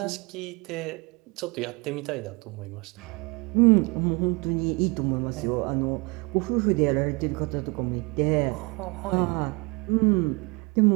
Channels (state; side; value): quieter; left; 28.3 dB